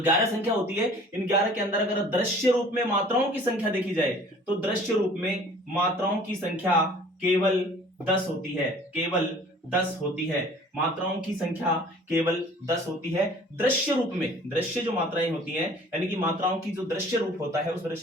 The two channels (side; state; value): both; normal; correlation 0.50